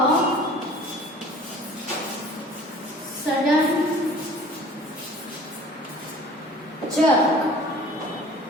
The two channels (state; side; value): normal; both; correlation 0.47